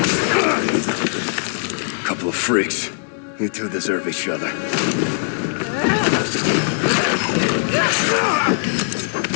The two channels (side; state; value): right; silent; digital silence